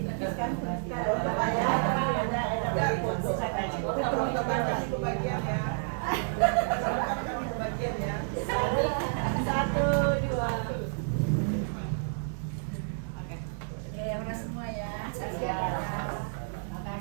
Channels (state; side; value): silent; left; digital silence